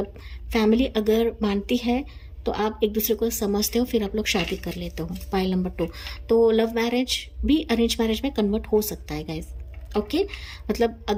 फैमिली अगर मानती है तो आप एक दूसरे को समझते हो, फिर आप लोग शादी कर लेते हो। पाइल नंबर 2, तो लव मैरिज भी अरेंज मैरिज में कन्वर्ट हो सकता है गाइज। ओके, मतलब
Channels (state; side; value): identical; both; correlation 1.00